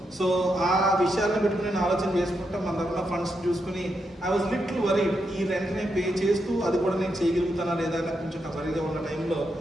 సో ఆ విషయాలను పెట్టుకుని నేను ఆలోచన చేసుకుంటా మన దగ్గర ఫండ్స్ చూసుకుని ఐ వాజ్ లిటిల్ వరీడ్. ఈ రెంట్ని పే చేస్తూ అది కూడా నేను చేయగలుగుతానా లేదా అని కొంచెం వరీగా ఉన్న టైంలో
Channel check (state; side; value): normal; both; correlation 0.83